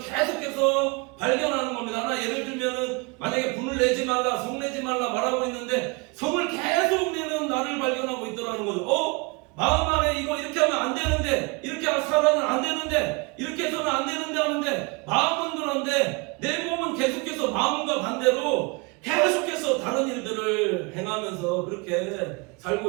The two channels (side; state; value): left; quieter; 28.5 dB